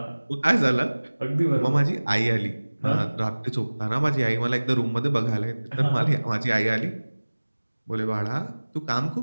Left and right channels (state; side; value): inverted; both; correlation -1.00